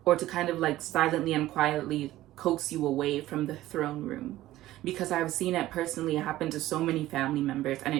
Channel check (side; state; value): left; quieter; 15.4 dB